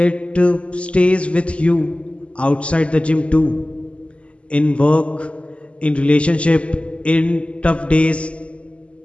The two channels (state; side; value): late; right; 0.059 ms